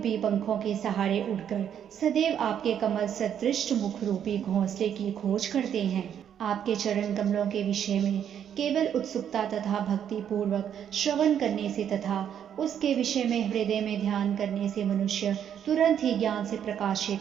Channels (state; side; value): quieter; left; 9.1 dB